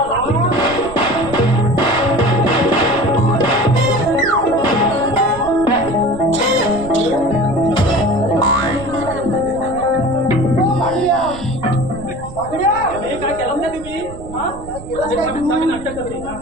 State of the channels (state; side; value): noise; right; rumble, 14 dB below the sound